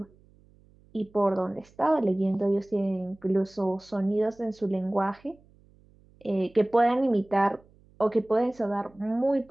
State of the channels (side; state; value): right; noise; hum, 29 dB below the sound